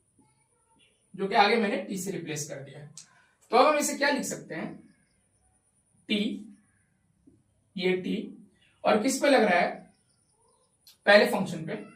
जो कि आगे मैंने टी से रिप्लेस कर दिया है। तो अब हम इसे क्या लिख सकते हैं? टी, ये टी, और किस पे लग रहा है? पहले फंक्शन पे,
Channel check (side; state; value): both; identical; correlation 1.00